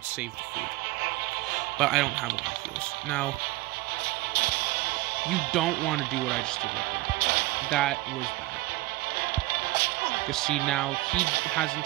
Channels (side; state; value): left; quieter; 19.4 dB